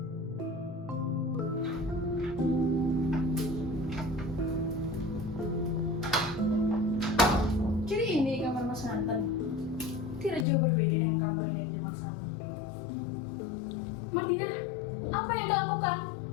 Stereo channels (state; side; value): drops out; right; at 10.5 s